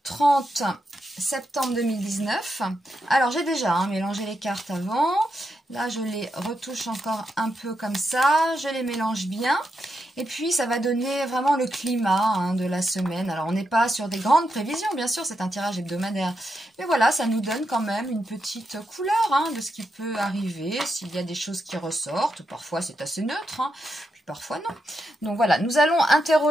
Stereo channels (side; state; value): both; normal; correlation 0.84